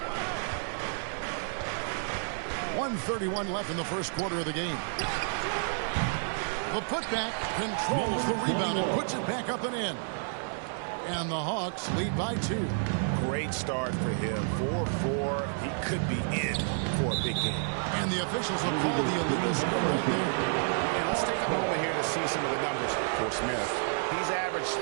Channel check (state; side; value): silent; left; 58 dB below the other